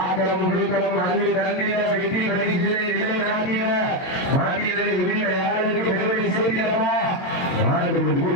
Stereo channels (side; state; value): right; late; 22 ms